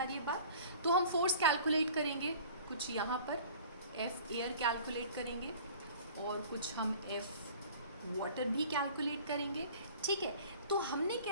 रही है बात। तो हम फोर्स कैलकुलेट करेंगे, कुछ यहाँ पर F एयर कैलकुलेट करेंगे, और कुछ हम F वाटर भी कैलकुलेट करेंगे। ठीक है, तो हमने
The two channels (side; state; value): both; inverted; correlation -0.46